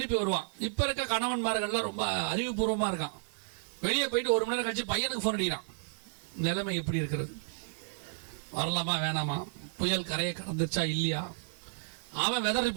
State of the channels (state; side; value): silent; left; digital silence